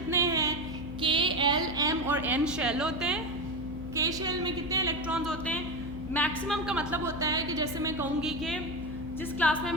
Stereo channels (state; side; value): noise; left; hum, 11 dB below the sound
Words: हैं? K, L, M और N शेल होते हैं. K शेल में कितने इलेक्ट्रॉन्स होते हैं? मैक्सिमम का मतलब होता है कि जैसे मैं कहूँगी कि जिस क्लास में